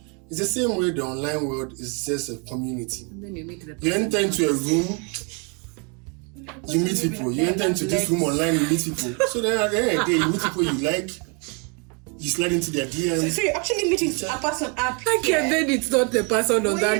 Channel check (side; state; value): left; quieter; 34.7 dB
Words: It's the same way the online world is just a community. And then you meet the You enter into a room, you meet people. You enter into this room online, you meet people. So then at the end of the day, you meet people you like, you slide into their DMs. So you're actually meeting a person up Okay, here. then it's not the person on